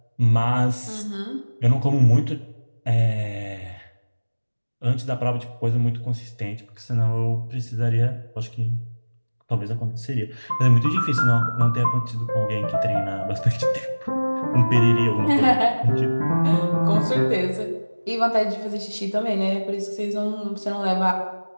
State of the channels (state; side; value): inverted; both; correlation -1.00